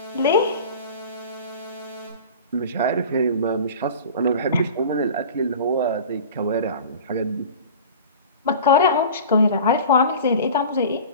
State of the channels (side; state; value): both; inverted; correlation -0.37